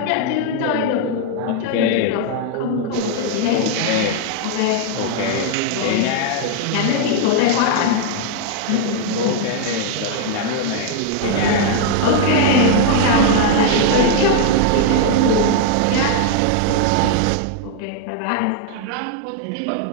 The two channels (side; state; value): both; different; correlation 0.00